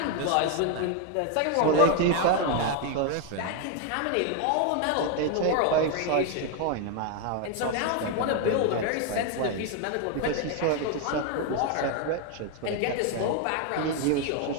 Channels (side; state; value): both; different; correlation 0.01